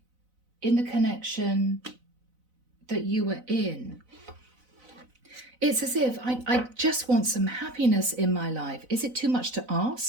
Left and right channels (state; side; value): late; left; 4.0 ms